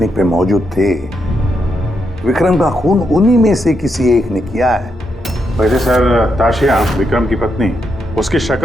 पे मौजूद थे, विक्रम का खून उन्हीं में से किसी एक ने किया है। वैसे सर ताशिया, विक्रम की पत्नी, उसकी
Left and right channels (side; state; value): both; normal; correlation 0.81